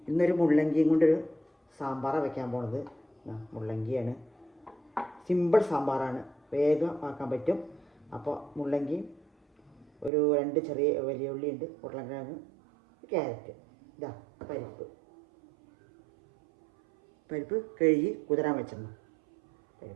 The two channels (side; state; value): left; drops out; at 10.1 s